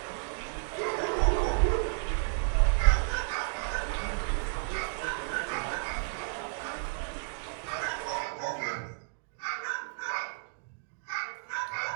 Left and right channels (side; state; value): left; silent; digital silence